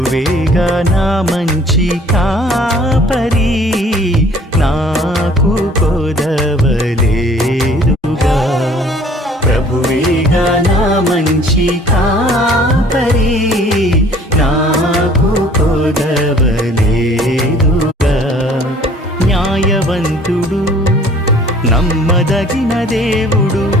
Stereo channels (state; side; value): normal; both; correlation 0.54